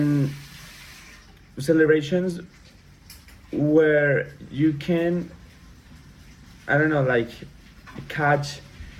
celebrations where you can, I don't know, catch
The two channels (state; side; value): identical; both; correlation 1.00